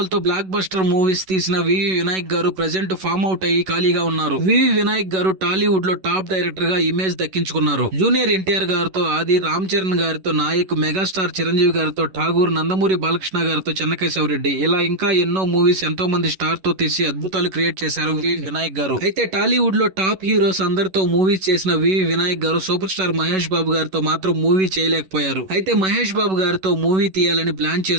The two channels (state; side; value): late; left; 11 ms